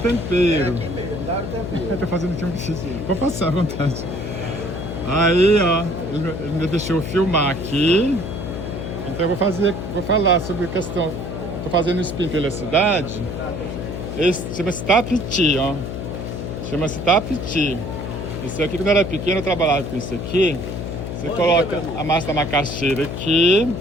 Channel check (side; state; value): left; noise; hum, 6 dB below the sound